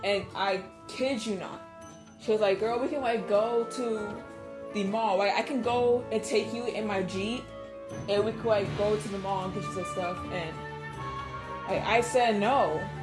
and I kid you not, she was like, girl, we can, like, go to the mall. Like, I can go and take you in my Jeep, and we could, like, go to the mall and get you some stuff. And like, I said no.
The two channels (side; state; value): both; identical; correlation 1.00